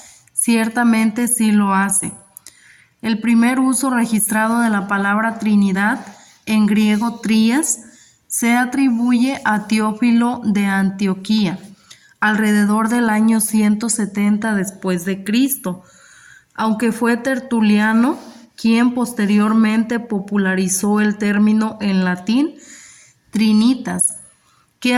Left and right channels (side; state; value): both; identical; correlation 1.00